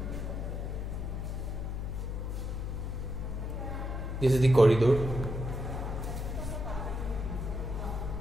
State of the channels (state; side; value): noise; left; hum, 3 dB below the sound